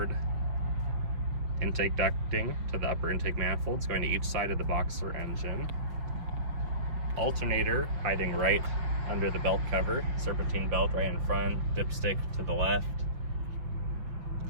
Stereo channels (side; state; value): left; late; 5.9 ms